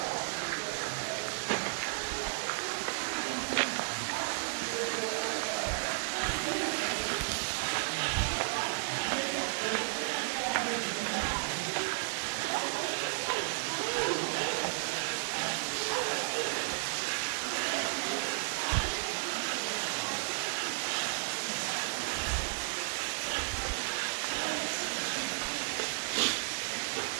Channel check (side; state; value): left; silent; digital silence